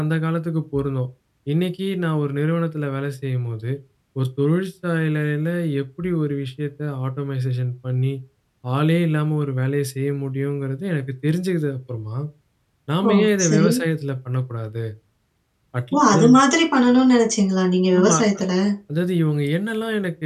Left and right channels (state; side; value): identical; both; correlation 1.00